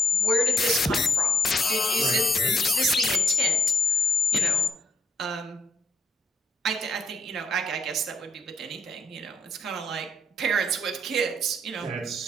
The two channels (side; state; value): both; normal; correlation 0.77